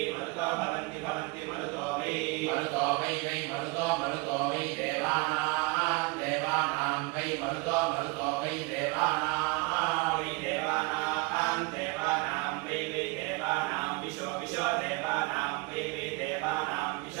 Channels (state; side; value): quieter; left; 27.2 dB